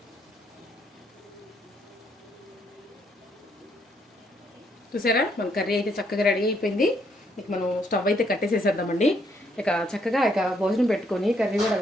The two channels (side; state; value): both; normal; correlation 0.72